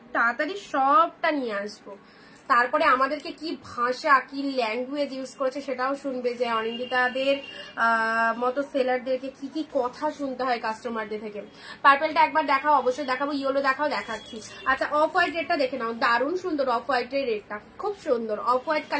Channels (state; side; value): identical; both; correlation 1.00